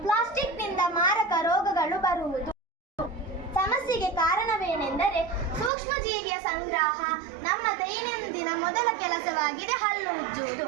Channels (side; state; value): left; drops out; at 5.7 s